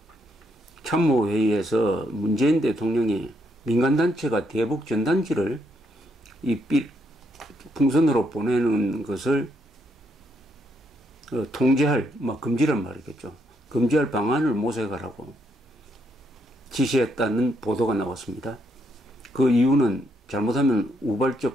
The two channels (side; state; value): both; normal; correlation 0.76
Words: 참모회의에서 문재인 대통령이 민간단체가 대북 전단지를 풍선으로 보내는 것을 통제할, 금지란 말이겠죠. 금지할 방안을 모색하라고 지시했다는 보도가 나왔습니다. 그 이유는 잘못하면